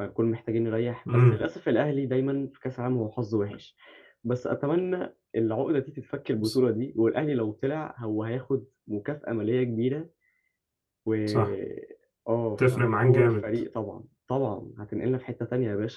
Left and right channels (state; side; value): identical; both; correlation 1.00